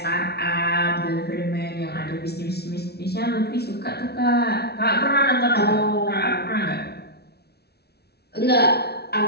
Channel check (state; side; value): late; right; 0.47 ms